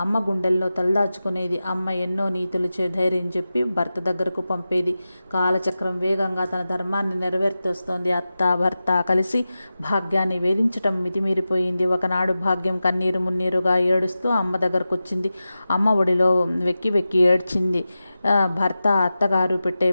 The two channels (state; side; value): inverted; both; correlation -0.94